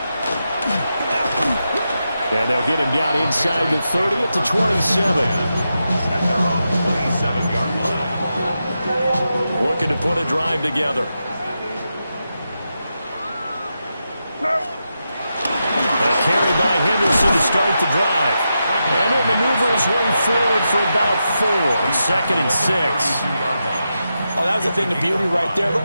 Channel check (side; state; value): both; inverted; correlation -0.88